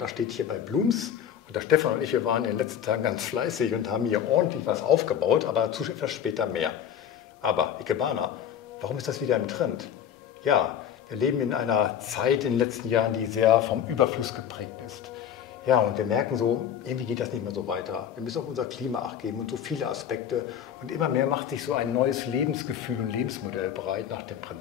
da steht hier bei Blooms und der Stefan und ich, wir waren in den letzten Tagen ganz fleißig und haben hier ordentlich was aufgebaut, aber dazu etwas später mehr. Aber Ikebana, warum ist das wieder im Trend? Ja, wir leben in einer Zeit in den letzten Jahren, die sehr vom Überfluss geprägt ist. Ja, und wir merken so, irgendwie geht das nicht mehr so weiter. Wir müssen auf unser Klima Acht geben und so viele Aspekte. Und immer mehr macht sich so ein neues Lebensgefühl und Lebensmodell bereit nach dem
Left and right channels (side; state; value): right; quieter; 9.1 dB